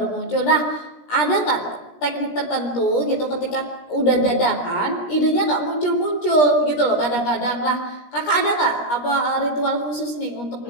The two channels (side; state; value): right; late; 17 ms